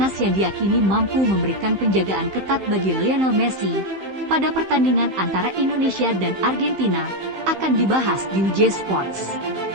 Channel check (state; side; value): late; left; 15 ms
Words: yang diyakini mampu memberikan penjagaan ketat bagi Lionel Messi pada pertandingan antara Indonesia dan Argentina akan dibahas di WJ Sports.